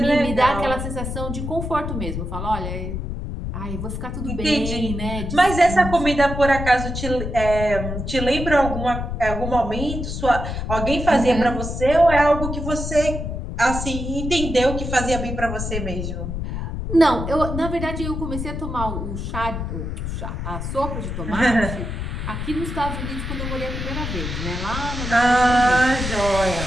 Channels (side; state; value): left; noise; rumble, 5 dB below the sound